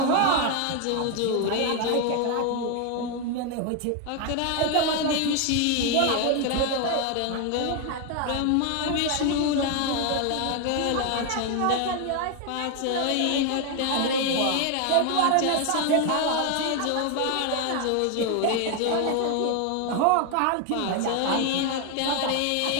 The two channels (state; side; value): different; both; correlation 0.01